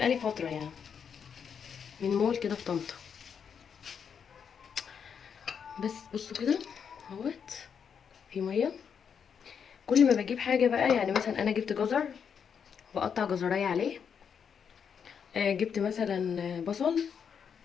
فتره يعني من مول كده في طنطا. بس بصوا كده اهوت في ميه. كل ما بجيب حاجه بقى، يعني مثلا انا جبت جزر بقطع جزرايه عليه، جبت مثلا بصل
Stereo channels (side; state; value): right; quieter; 7.1 dB